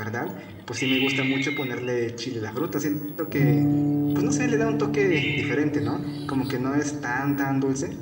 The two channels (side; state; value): both; identical; correlation 1.00